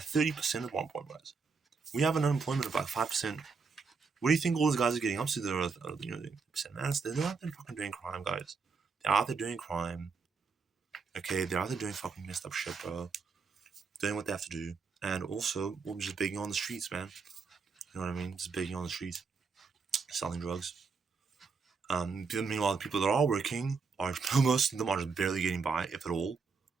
at one point, guys. We have an unemployment of like 5%. What do you think all those guys are getting up to? They're 30%, man. They're out there fucking doing crime, guys. They're out there doing crime. Okay, they're out there doing fucking messed up shit, bro. Doing what they have to do, and also we're just begging on the streets, man. You know what I mean? Just begging on the streets, selling drugs. Meanwhile, the people that are working are most of them are just barely getting by, if at all.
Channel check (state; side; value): quieter; left; 4.9 dB